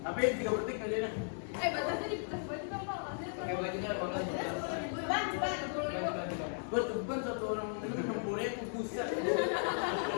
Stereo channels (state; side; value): silent; right; digital silence